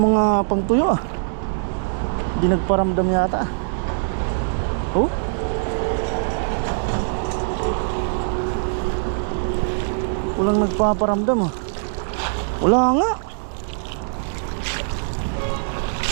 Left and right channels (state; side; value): silent; left; digital silence